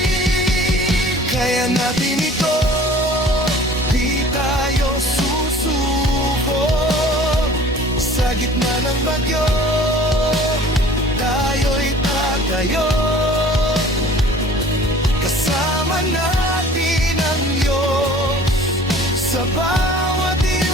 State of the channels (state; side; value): normal; both; correlation 0.48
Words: Kaya natin ito, di tayo susuko. Sa gitna ng bagyo, tayo'y tatayo. Kasama natin ang Diyos sa bawat